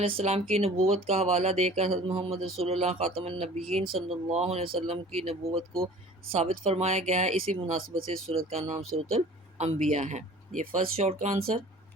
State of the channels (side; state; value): both; normal; correlation 0.45